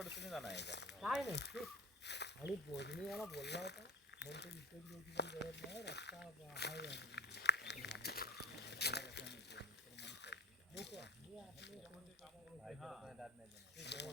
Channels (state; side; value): normal; both; correlation 0.36